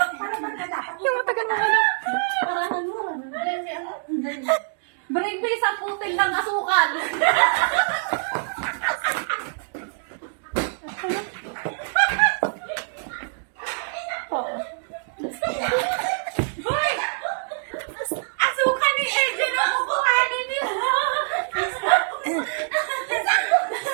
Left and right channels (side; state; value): left; silent; digital silence